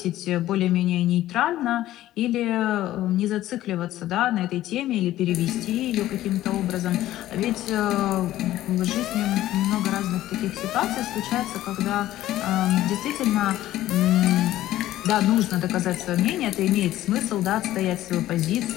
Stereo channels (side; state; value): right; quieter; 14.3 dB